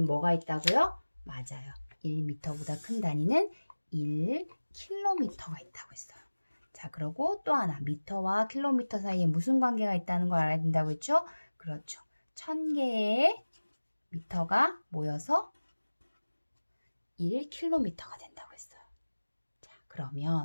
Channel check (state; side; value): inverted; both; correlation -1.00